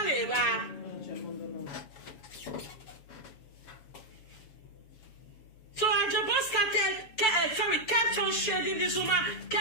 so Ajebo kept on shading this woman,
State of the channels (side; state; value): right; late; 7.4 ms